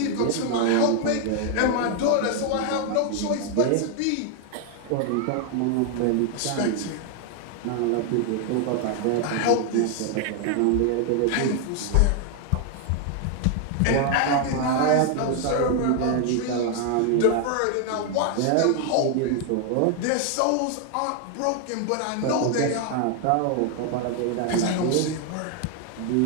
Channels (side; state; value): both; different; correlation 0.00